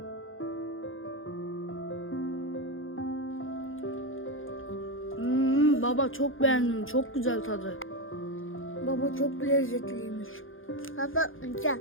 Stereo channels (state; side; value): late; right; 0.59 ms